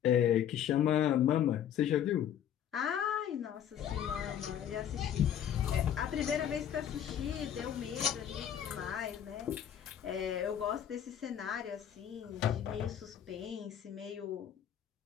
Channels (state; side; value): quieter; right; 9.7 dB